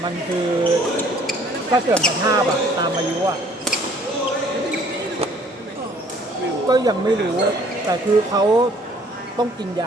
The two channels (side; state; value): both; normal; correlation 0.58